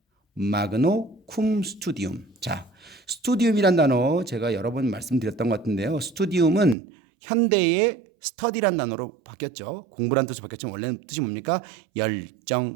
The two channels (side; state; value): left; drops out; at 6.8 s